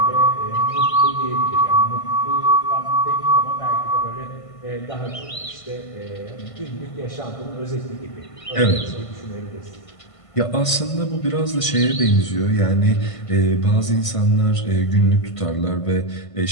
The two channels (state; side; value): late; right; 1.5 ms